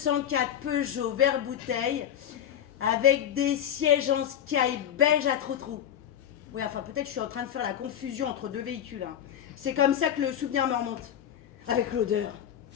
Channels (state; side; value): quieter; right; 10.1 dB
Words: Peugeot vert bouteille avec des sièges en sky beige à trou-trou. Oui, enfin, peut-être je suis en train de faire la confusion entre deux véhicules. Hein. C'est comme ça que le souvenir me remonte. Avec l'odeur.